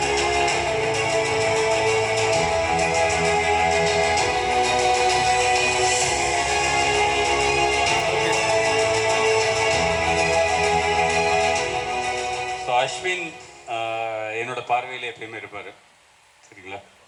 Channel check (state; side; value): identical; both; correlation 1.00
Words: அஸ்வின் என்னோட பார்வையில் எப்பயுமே இருப்பார், சரிங்களா?